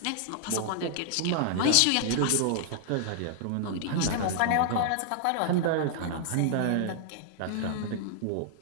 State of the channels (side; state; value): both; different; correlation -0.01